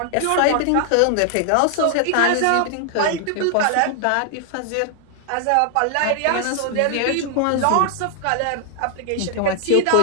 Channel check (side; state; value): both; different; correlation 0.00